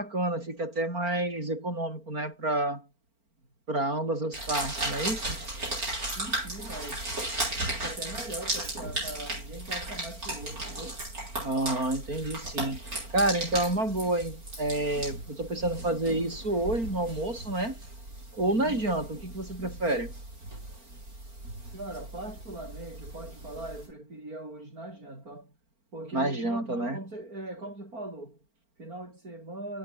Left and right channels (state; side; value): late; left; 4.4 ms